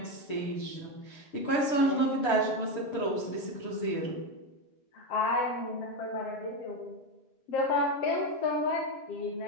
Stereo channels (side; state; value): right; late; 6.7 ms